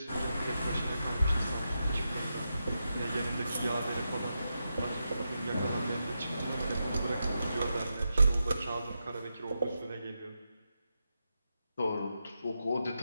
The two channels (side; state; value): both; inverted; correlation -0.87